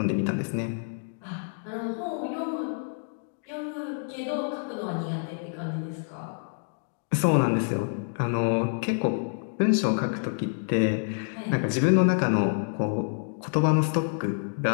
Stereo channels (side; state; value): right; silent; digital silence